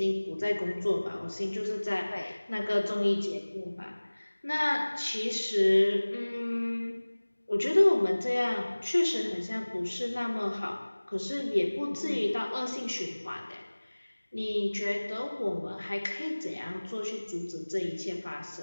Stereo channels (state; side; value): inverted; both; correlation -1.00